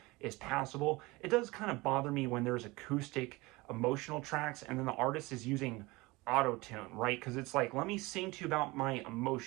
is passable. It does kind of bother me when there's acoustic emotional tracks and then the artist is using auto-tune, right? Because it's like, let me sing to you about my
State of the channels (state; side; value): quieter; left; 22.6 dB